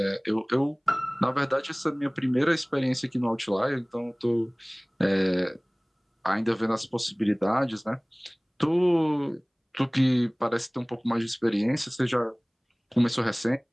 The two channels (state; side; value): identical; both; correlation 1.00